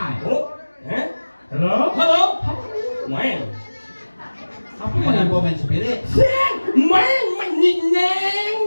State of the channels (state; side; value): inverted; both; correlation -1.00